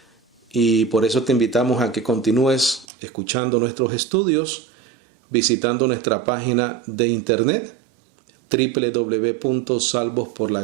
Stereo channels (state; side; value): drops out; left; at 2.9 s